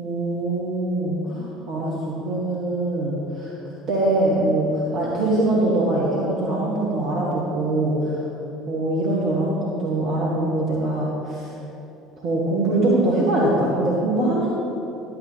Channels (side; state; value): both; normal; correlation 0.42